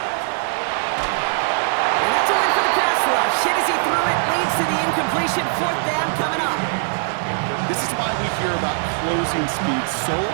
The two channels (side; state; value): left; silent; 58 dB below the other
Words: And that's a win for the pass rush. Hit as he threw it, leads to the incompletion. Fourth down coming up. This is why we hear about closing speed so